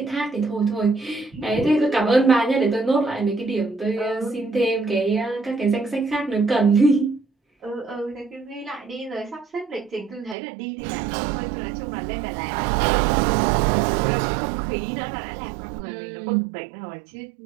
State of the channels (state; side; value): drops out; left; at 10.4 s